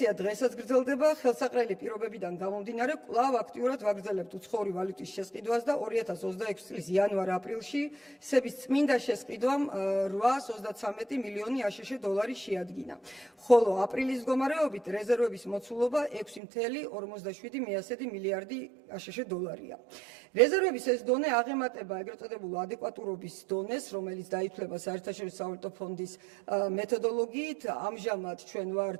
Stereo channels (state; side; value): drops out; left; at 16.4 s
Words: დღესაც გრძელდება, ხელსაყრელი პირობებიდან გამომდინარე, კვლავ აქტიურად ვაგრძელებთ უცხოური ვალუტის შესყიდვას და 2026 წლის იანვარ-აპრილში სების წმინდა შესყიდვამ 833 მილიონი აშშ დოლარი შეადგინა. ხოლო აპრილის მდგომარეობით რეზერვების მოცულობა 6.57 მილიარდი აშშ დოლარია. რეზერვების ეს დონე აღემატება ეგრეთ წოდებულ ადეკვატურობის დონეს, რომელიც დაითვლება საერთაშორისო სავალუტო ფონდის მეთოდოლოგიით. ამჟამად ჩვენ